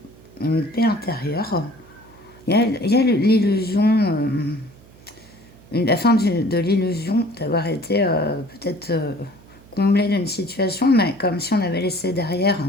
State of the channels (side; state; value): right; noise; hum, 24 dB below the sound